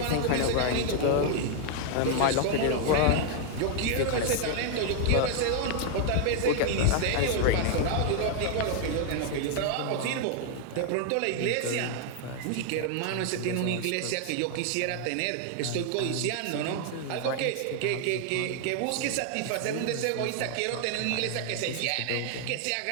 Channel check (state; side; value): different; both; correlation 0.00